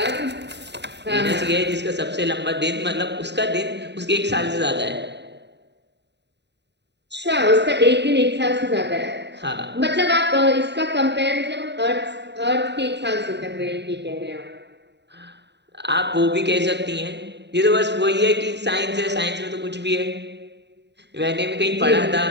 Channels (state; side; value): late; left; 0.50 ms